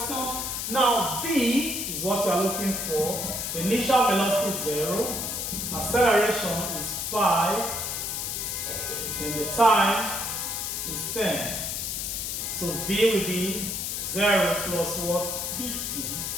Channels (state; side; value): noise; left; hiss, 3 dB below the sound